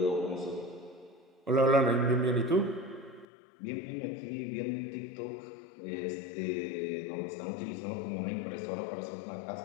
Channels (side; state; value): right; drops out; at 3.2 s